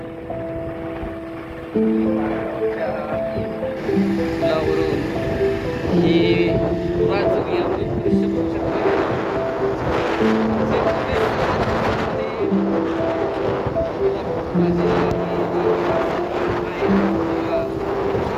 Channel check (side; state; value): both; identical; correlation 1.00